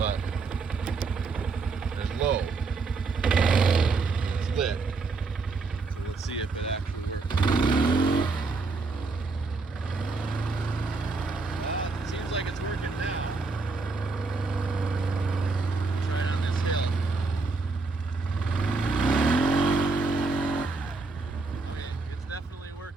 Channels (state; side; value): quieter; left; 4.1 dB